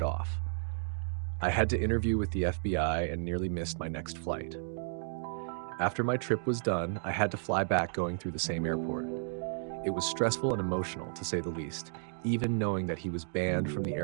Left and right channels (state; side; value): silent; left; digital silence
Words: off. I had to interview with the FBI and nearly missed my next flight. After my trip was done, I had to fly back going through the same airport. It was stressful and emotional, to say the least, even knowing that he was banned from the